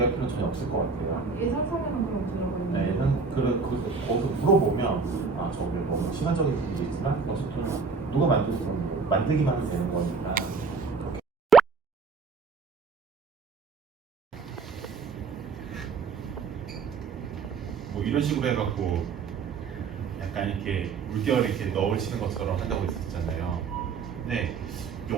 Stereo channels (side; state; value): left; quieter; 4.9 dB